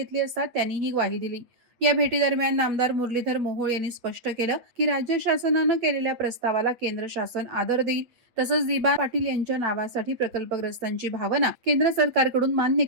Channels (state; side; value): late; left; 8.4 ms